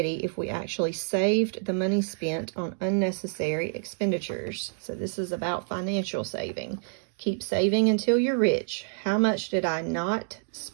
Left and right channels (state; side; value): silent; left; digital silence